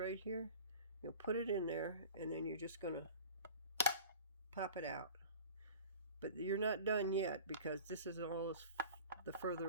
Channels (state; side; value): inverted; both; correlation -0.41